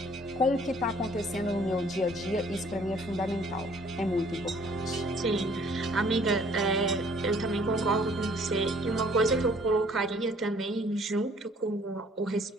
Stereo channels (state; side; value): normal; both; correlation 0.58